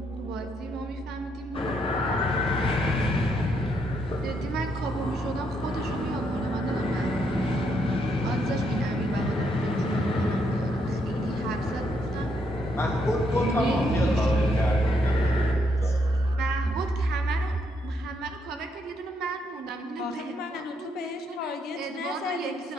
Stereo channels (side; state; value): both; normal; correlation 0.75